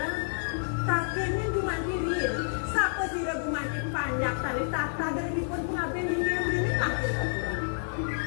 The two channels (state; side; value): silent; right; 58 dB below the other